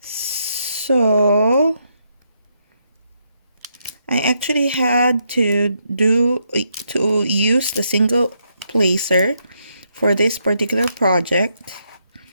I actually had to use the single placer for this particular project,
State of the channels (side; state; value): both; inverted; correlation -0.78